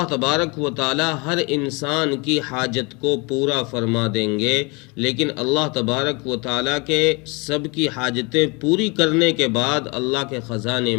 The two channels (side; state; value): right; quieter; 28.5 dB